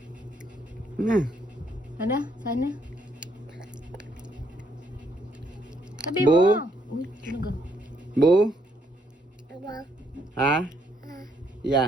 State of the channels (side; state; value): both; normal; correlation 0.72